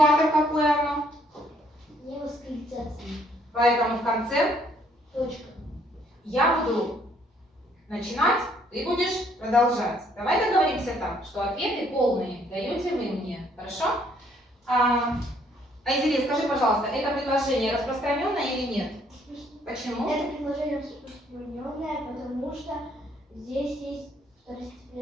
какое оно? Не восклицательное. Поэтому в конце Точка. я буду начинать, ты будешь продолжать. Давай договоримся так, что ответы полные даете вы мне. Хорошо? Айзере, скажи, пожалуйста, это предложение распространенное или нет? Почему? Это предложение распространенное, потому что здесь есть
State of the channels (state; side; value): normal; both; correlation 0.66